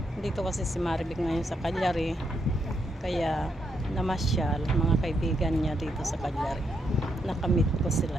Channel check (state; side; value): normal; both; correlation 0.79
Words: dito kasi si Maribik ngayon sa Cagliari, kaya namasyal mga kaibigan niya dito sa Cagliari. Nakamit ko